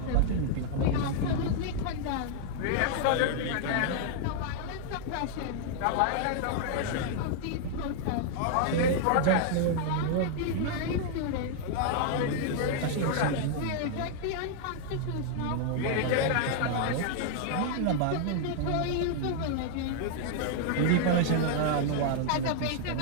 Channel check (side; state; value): both; different; correlation 0.00